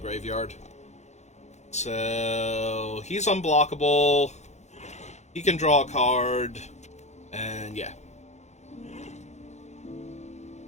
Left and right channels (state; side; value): late; right; 0.33 ms